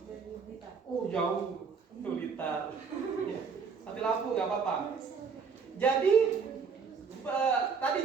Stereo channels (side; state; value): left; quieter; 5.7 dB